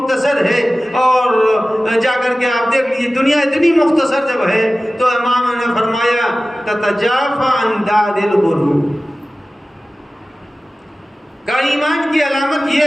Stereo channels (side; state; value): both; normal; correlation 0.96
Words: ہے اور جا کر کے آپ دیکھ لیجیے دنیا اتنی مختصر جب ہے تو امام نے فرمایا تتجافى عن دار الغرور، کا ایمان کی علامت